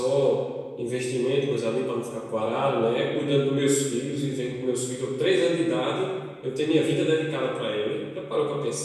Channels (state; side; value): identical; both; correlation 1.00